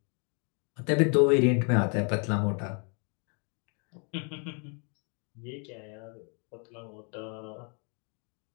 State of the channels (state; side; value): quieter; right; 37.5 dB